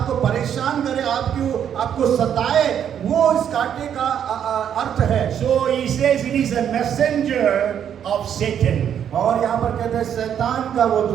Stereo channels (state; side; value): quieter; left; 9.0 dB